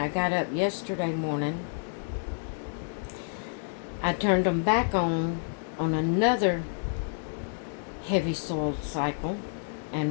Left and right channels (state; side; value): silent; right; digital silence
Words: got up yesterday morning, I turned them back on another heavy-soled cycle